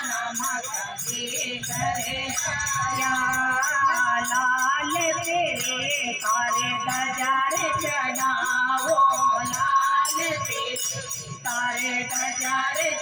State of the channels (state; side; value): identical; both; correlation 1.00